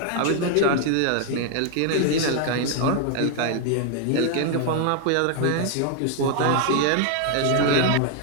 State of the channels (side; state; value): both; different; correlation 0.00